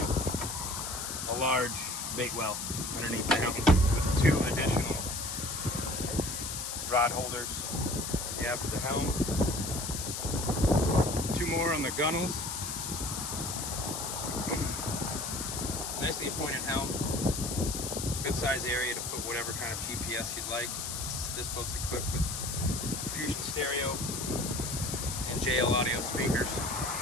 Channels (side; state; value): left; noise; hiss, 4 dB below the sound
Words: a large bait well underneath the helm with 2 additional rod holders after the helm. 2 more on the gunnels. Nicely appointed helm. Good size area to put whatever kind of GPS you'd like. This boat's equipped with Fusion stereo and JL audio speakers.